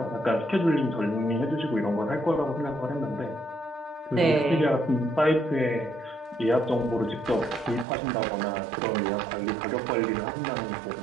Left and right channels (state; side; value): drops out; left; at 7.9 s